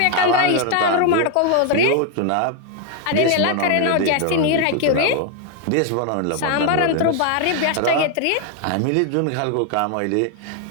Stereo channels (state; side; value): different; both; correlation 0.01